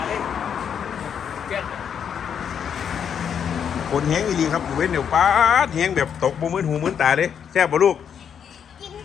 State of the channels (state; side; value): quieter; right; 7.9 dB